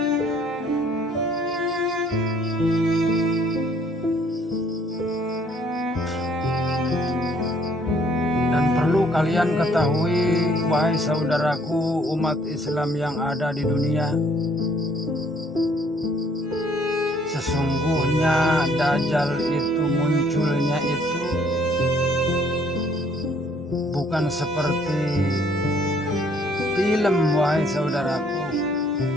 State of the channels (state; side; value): normal; both; correlation 0.62